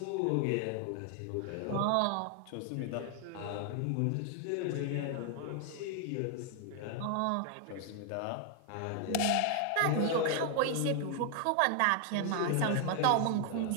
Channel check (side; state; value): both; different; correlation 0.00